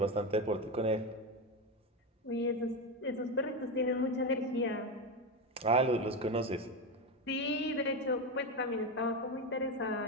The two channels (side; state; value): both; normal; correlation 0.14